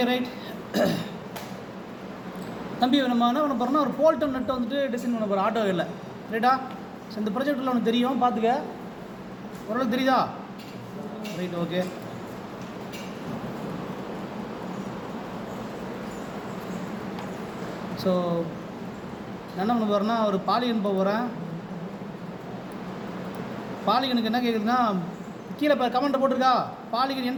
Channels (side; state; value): both; identical; correlation 1.00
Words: right. தம்பி நம்ம என்ன பண்ண போகிறோம்னா ஒரு போல்டன் நெட்டை வந்துட்டு டிசைன் பண்ண போகிறோம் ஆட்டோ இல்லை ரைட்டா. ஸோ இந்த ப்ராஜெக்டில் ஒன்று தெரியும், பார்த்துக்க. ஓரளவுக்கு தெரியுதா? Right, okay. ஸோ நான் என்ன பண்ண போகிறேன்னா ஒரு பாலிகன் போக போகிறேன். பாலிகனுக்கு என்ன கேட்குதுன்னா கீழே இப்போ கமெண்ட்டை போட்டிருக்கா, polygon